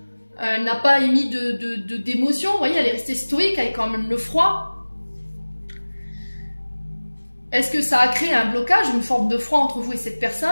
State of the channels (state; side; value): inverted; both; correlation -1.00